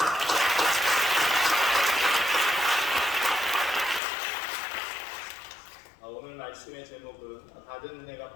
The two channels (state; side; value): drops out; right; at 4.0 s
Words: 오늘 말씀의 제목은 받은